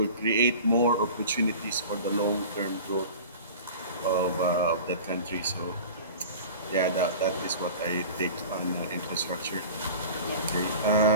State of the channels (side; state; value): both; inverted; correlation -0.38